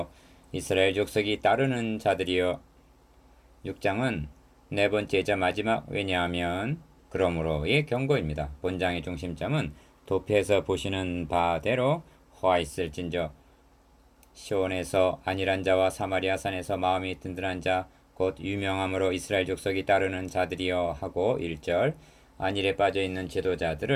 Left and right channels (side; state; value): both; identical; correlation 1.00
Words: 이스라엘 족속이 따르는 자들이여. 6장은 네 번째이자 마지막 왜냐하면 그러므로의 경고입니다. 본장의 중심점은 도표에서 보시는 바대로 화 있을진저 시온에서 안일한 자와 사마리아 산에서 마음이 든든한 자 곧 유명함으로 이스라엘 족속이 따르는 자들이여 하고 1절 안일에 빠져있는